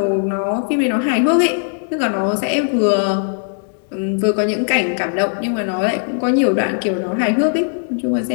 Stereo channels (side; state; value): right; silent; digital silence